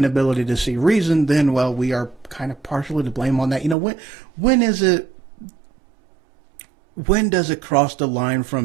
to see reason, then, well, we are kind of partially to blame on that. When does it cross the line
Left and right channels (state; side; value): drops out; left; at 3.8 s